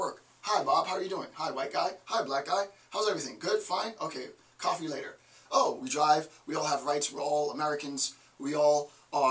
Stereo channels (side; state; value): both; identical; correlation 1.00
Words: Hi, Bob, how are you doing? Hi, white guy. Hi, black guy. How's everything? Good? Fine? Okay, coffee later. Oh, we drive. We all have rights. We're all Americans. We all